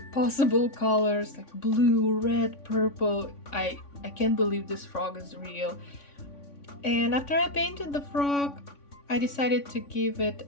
possible colors, like blue, red, purple. I can't believe this frog is real. And after I painted the frog, I decided to give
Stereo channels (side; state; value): right; late; 3.5 ms